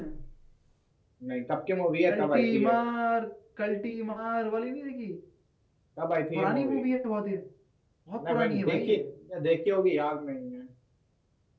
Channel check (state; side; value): identical; both; correlation 1.00